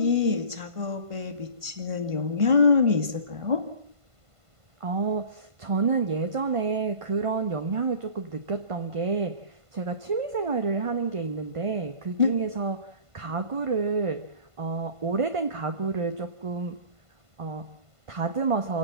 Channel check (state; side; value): late; left; 1.5 ms